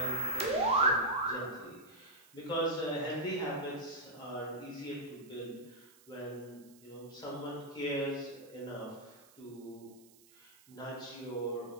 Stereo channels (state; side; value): noise; right; hiss, 25 dB below the sound